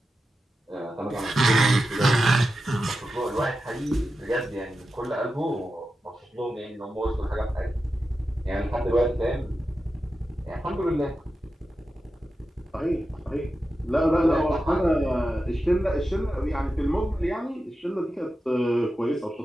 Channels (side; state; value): both; normal; correlation 0.91